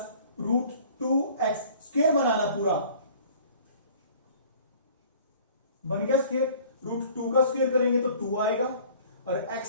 रूट 2x स्क्वायर बनाना पूरा, बन गया स्क्वायर, रूट 2 का स्क्वायर करेंगे तो 2 आएगा और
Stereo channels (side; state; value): both; inverted; correlation -0.51